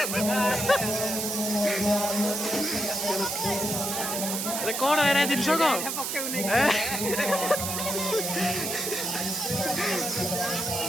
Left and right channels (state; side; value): noise; right; hiss, 2 dB below the sound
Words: कौन है जिनस